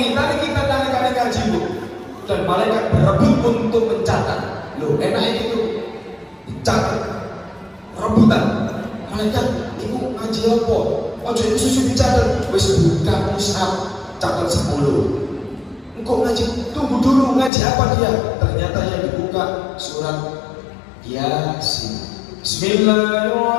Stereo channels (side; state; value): right; drops out; at 17.5 s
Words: kita dari ngaji Bu. Dan malaikat berebut untuk mencatat. Loh, enaknya itu dicatat, rebutan. Malaikat, ibu ngaji apa? Ojo itu susu dicatat. Wis buka mushaf, catat 10. Engkau ngaji, tunggu dulu ngaji apa dia? Ternyata yang dibuka surat Yasin.